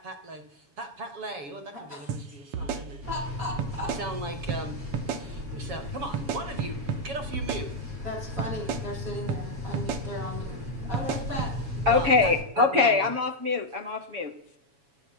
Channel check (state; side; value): late; left; 7.1 ms